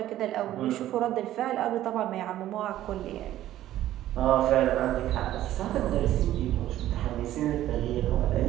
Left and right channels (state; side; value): quieter; left; 13.4 dB